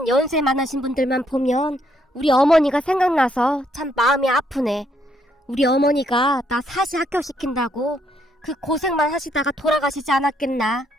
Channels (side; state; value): both; normal; correlation 0.72